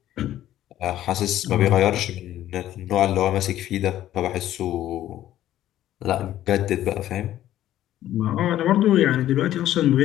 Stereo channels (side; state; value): right; quieter; 12.9 dB